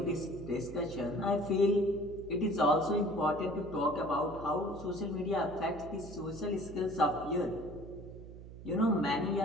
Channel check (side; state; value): right; noise; hum, 14 dB below the sound